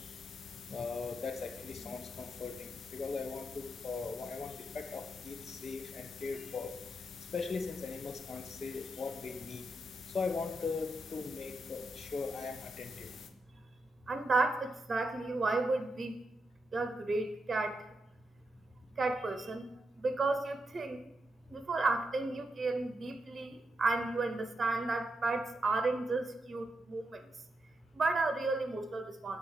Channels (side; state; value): both; normal; correlation 0.84